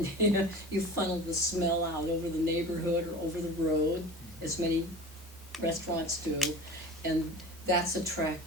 you funnel the smell out over the neighborhood or over the road, as many restaurants do, and that's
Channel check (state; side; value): normal; both; correlation 0.36